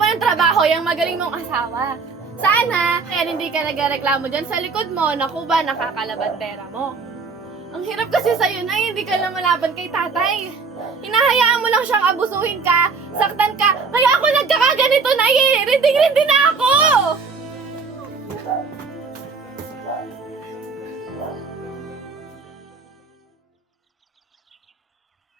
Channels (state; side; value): quieter; left; 4.8 dB